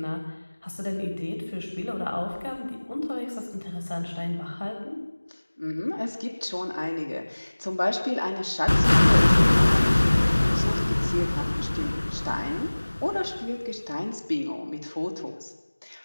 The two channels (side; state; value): both; inverted; correlation -1.00